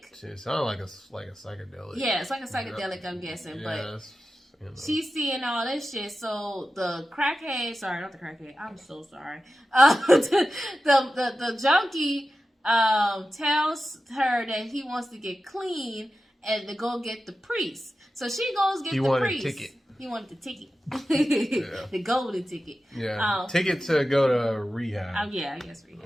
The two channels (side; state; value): both; normal; correlation 0.93